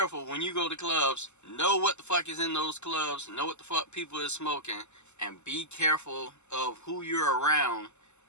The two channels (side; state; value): right; late; 0.83 ms